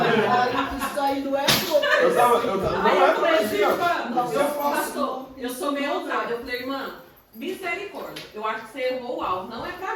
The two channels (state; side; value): identical; both; correlation 1.00